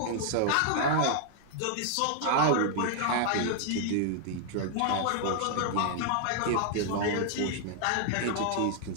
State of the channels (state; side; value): different; both; correlation 0.00